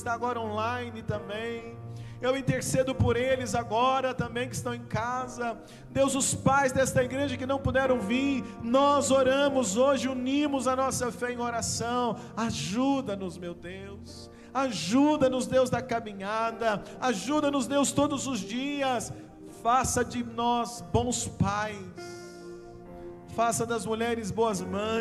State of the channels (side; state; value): both; identical; correlation 1.00